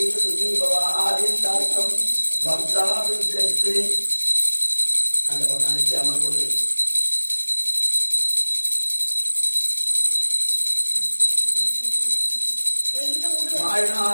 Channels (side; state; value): both; inverted; correlation -1.00